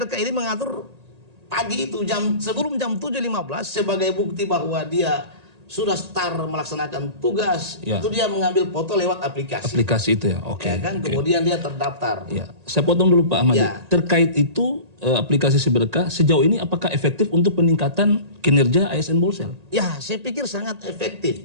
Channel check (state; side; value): late; left; 1.8 ms